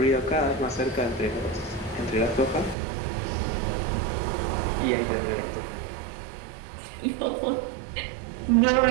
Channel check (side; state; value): left; drops out; at 2.8 s